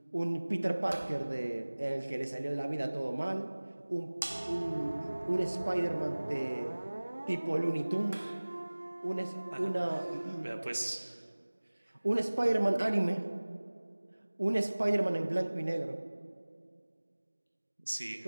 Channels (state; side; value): inverted; both; correlation -1.00